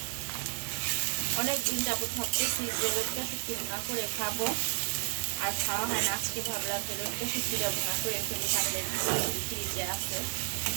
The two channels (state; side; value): silent; left; 57 dB below the other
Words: অনেক দিন যাবত ভাবতেছি যে লটকা শুটকি ভুনা করে খাবো, আর খাওয়া হয় না। আজকে ভাবলাম যে লটকা শুটকিটা ভুনা করে ফেলি। কাঁঠালের ফ্রিজে আছে,